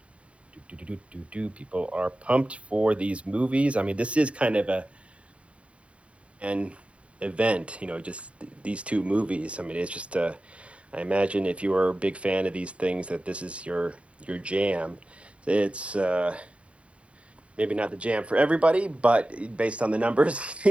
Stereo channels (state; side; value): late; left; 0.062 ms